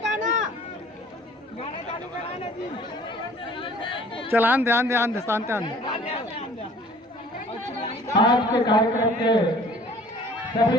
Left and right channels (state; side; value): normal; both; correlation 0.51